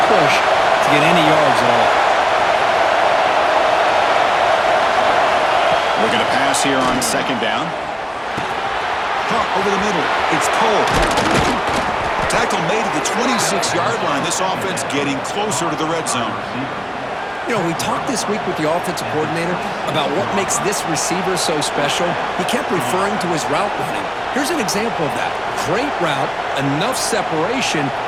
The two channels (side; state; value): both; identical; correlation 1.00